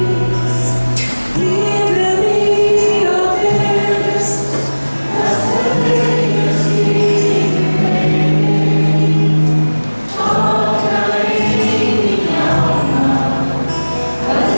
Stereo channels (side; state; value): both; inverted; correlation -1.00